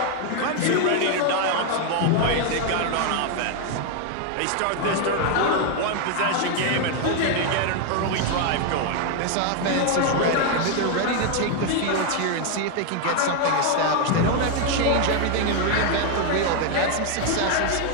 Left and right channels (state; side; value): different; both; correlation 0.01